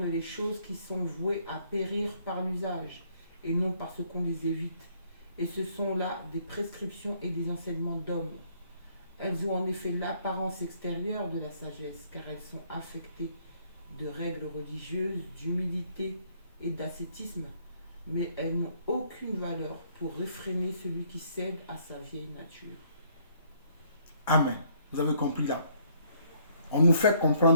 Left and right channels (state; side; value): inverted; both; correlation -0.66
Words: les choses qui sont vouées à périr par l'usage et non parce qu'on les évite. Et ce sont là des prescriptions et des enseignements d'hommes. Elles ont en effet l'apparence extérieure de la sagesse, car elles sont affectées de règles religieuses, d'humilité et d'ascétisme, mais elles n'ont aucune valeur pour réfréner celui qui cède à sa vieille nature. Amen. Vous avez compris là. On nous fait